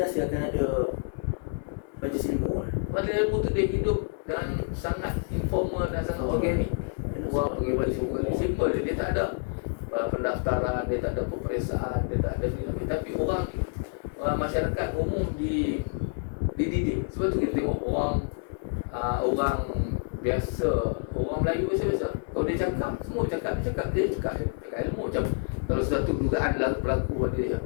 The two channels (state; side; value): silent; right; digital silence